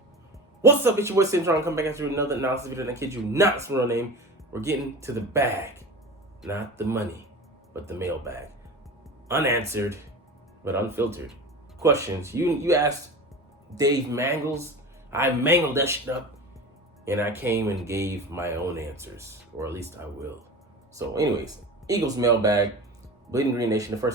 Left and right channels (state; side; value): normal; both; correlation 0.32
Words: What's up, it's your boy Cintron. Come back after another analysis video, and I kid you not, it's my real name. We're getting to the bag. Not the money, but the mailbag. Unanswered, but unfiltered questions. You asked Dave Mangles. I mangled that shit up, and I came and gave my own answers, or at least I will. So anyways, Eagles mailbag, Bleeding Green Nation, the